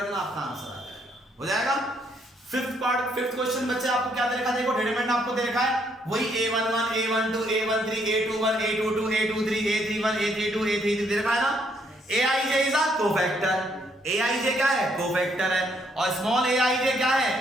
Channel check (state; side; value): normal; both; correlation 0.71